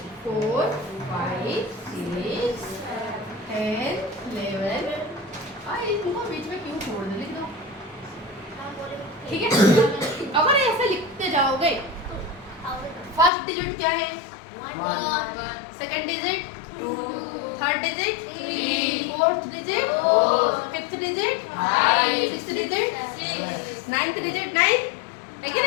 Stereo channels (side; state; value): right; drops out; at 13.3 s